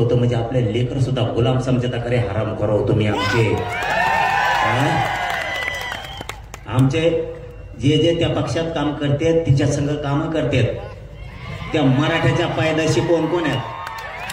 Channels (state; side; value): identical; both; correlation 1.00